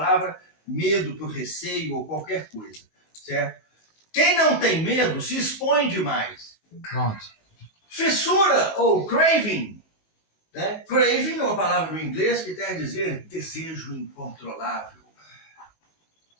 medo por receio ou qualquer coisa, certo? Quem não tem medo se expõe demais. Pronto. Fissura ou craving, né? Craving é uma palavra do inglês que quer dizer desejo incontrolável.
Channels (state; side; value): late; right; 19 ms